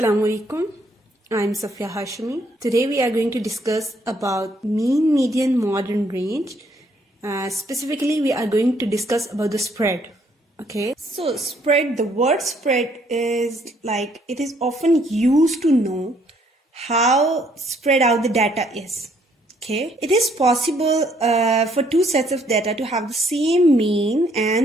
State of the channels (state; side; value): normal; both; correlation 0.67